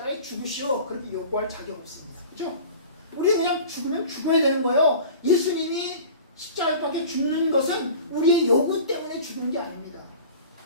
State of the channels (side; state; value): both; inverted; correlation -0.40